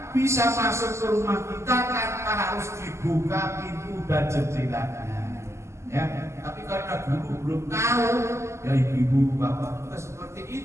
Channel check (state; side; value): late; left; 0.13 ms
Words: bisa masuk ke rumah kita tanpa harus dibuka pintu dan jendelanya. Ya, tapi karena dulu belum tahu, ya ibu-ibu, bapak juga seperti